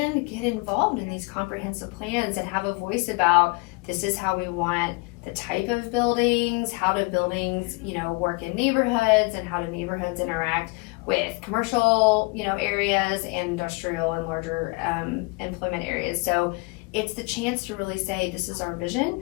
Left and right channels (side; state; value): right; quieter; 28.5 dB